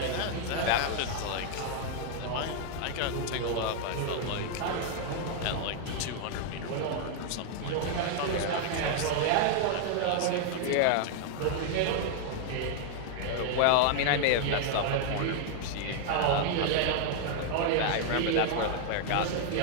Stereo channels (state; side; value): different; both; correlation 0.00